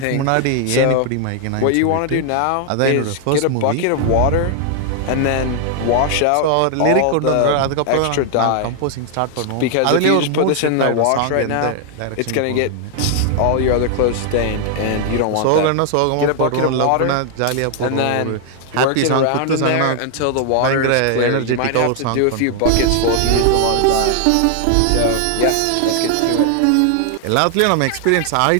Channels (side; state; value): both; different; correlation 0.00